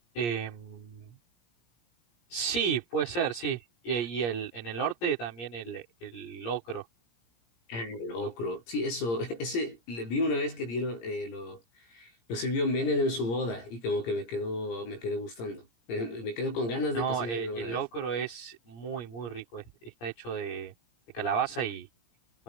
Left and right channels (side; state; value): right; late; 17 ms